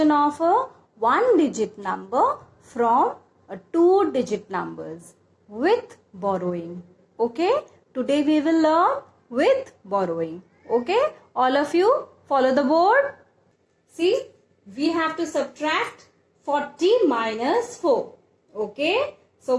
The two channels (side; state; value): both; identical; correlation 1.00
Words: of a 1-digit number from a 2-digit numbers with borrowing. Okay, today we will learn with borrowing. Okay, all of you follow the board. See, we have to subtract 40 minus 4. Okay, so